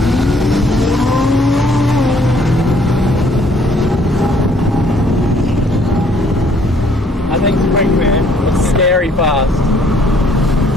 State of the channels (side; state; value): both; normal; correlation 0.63